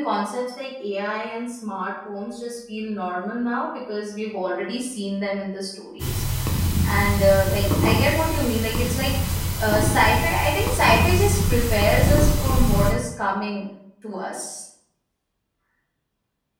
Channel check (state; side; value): identical; both; correlation 1.00